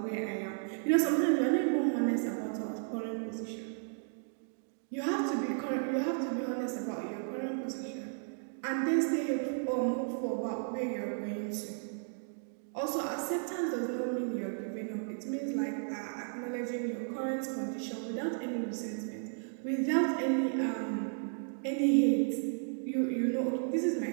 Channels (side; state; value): left; silent; digital silence